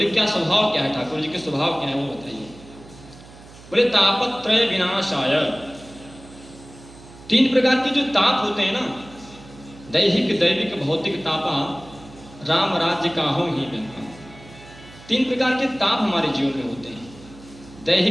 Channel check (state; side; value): noise; right; hum, 20 dB below the sound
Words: क्या स्वभाव क्या है? ठाकुर जी के स्वभाव क्या है वो बताइए। बोले तापत्रय विनाशाय, 3 प्रकार के जो ताप होते हैं ना, दैहिक, दैविक, भौतिक तापा राम राज्य काहो ही में। 3 प्रकार के ताप हमारे जीवन में होते हैं,